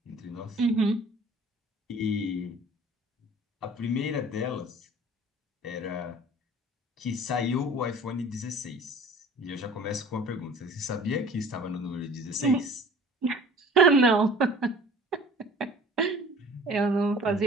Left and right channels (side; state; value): both; normal; correlation 0.47